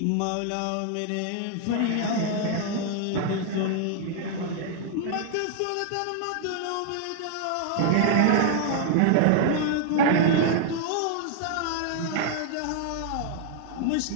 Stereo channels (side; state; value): both; different; correlation 0.00